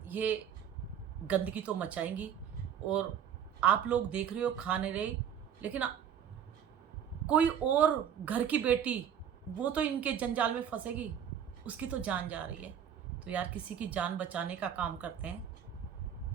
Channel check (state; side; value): quieter; left; 8.8 dB